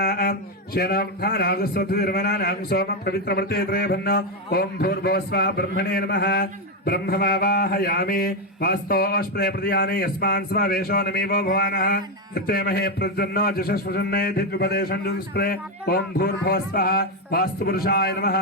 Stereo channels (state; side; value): normal; both; correlation 0.06